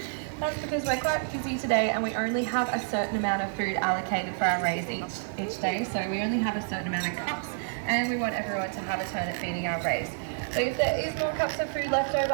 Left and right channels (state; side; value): silent; left; 58 dB below the other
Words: That's because we're quite busy today and we only have a certain amount of food allocated for our rays each day. So we only have a certain amount of cups and we want everyone to have a turn at feeding our rays. So if there is more cups of food left over